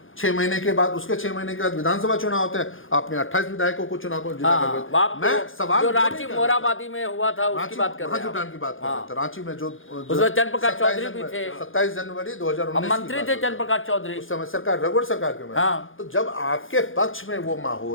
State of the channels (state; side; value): late; right; 0.58 ms